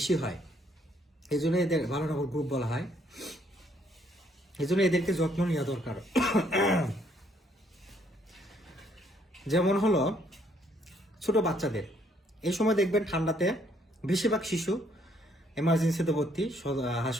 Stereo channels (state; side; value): normal; both; correlation 0.68